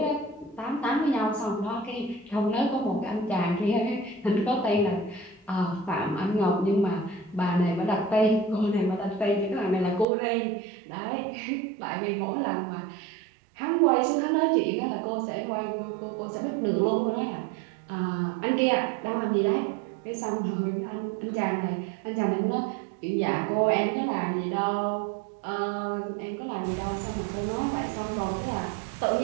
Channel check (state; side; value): drops out; left; at 10.1 s